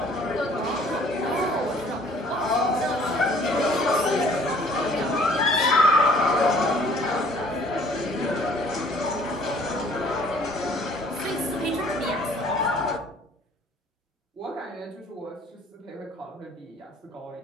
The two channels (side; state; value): both; normal; correlation 0.55